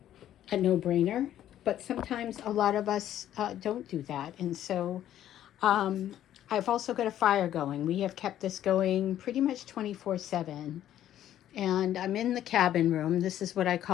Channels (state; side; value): quieter; right; 11.7 dB